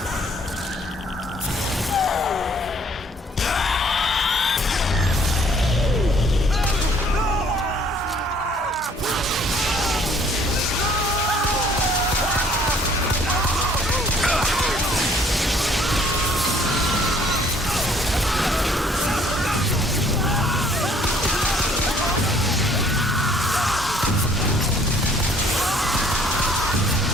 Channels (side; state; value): both; normal; correlation 0.60